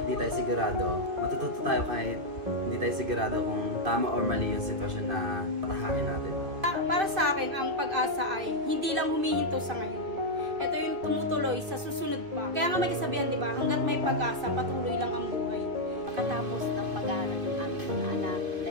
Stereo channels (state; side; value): late; left; 2.4 ms